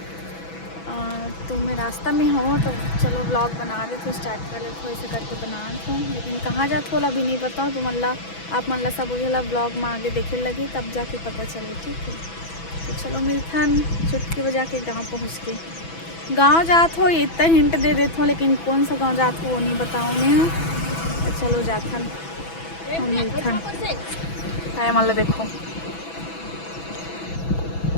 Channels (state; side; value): late; right; 6.1 ms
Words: तो मैं रास्ता में हूँ तो चलो ब्लॉग बना रहे थे, स्टार्ट कर रहे थे, ऐसे करके बना रहे थे, लेकिन कहाँ जात हो अभी नहीं पता हो। तो मतलब आप मतलब सब बोला ब्लॉग में आगे देखे लगी तब जाके पता चले। ठीक है तो चलो मिलथन चुटकी बजा के गाँव पहुँच के। गांव जात हो इतना हिंट दे देते हो, लेकिन कौन सा गांव जात हो वो नहीं बताऊँ मैं। तो चलो जाथन हम मिलथन है मतलब देखो